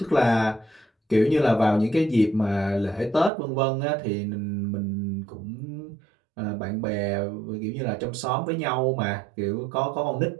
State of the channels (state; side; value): drops out; left; at 3.3 s